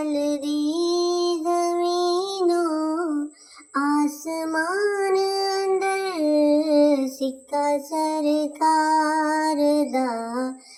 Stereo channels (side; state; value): both; identical; correlation 1.00